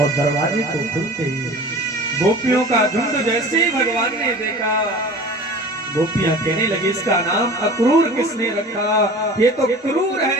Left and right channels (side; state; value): both; normal; correlation 0.40